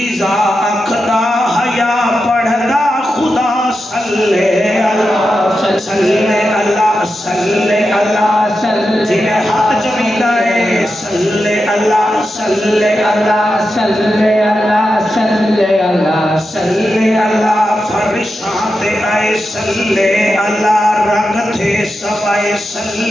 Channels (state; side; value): normal; both; correlation 0.89